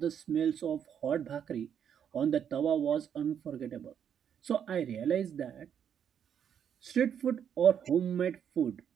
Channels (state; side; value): quieter; left; 8.5 dB